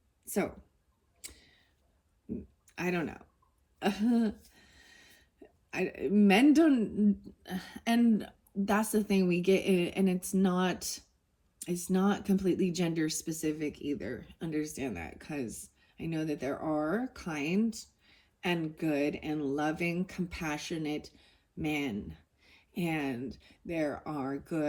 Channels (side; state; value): both; identical; correlation 1.00